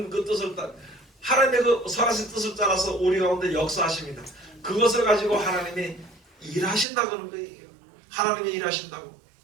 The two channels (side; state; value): left; drops out; at 6.9 s